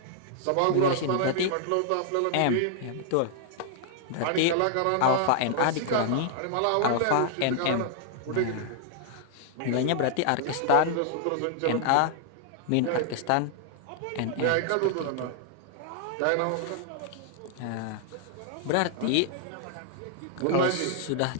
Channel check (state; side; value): different; both; correlation -0.01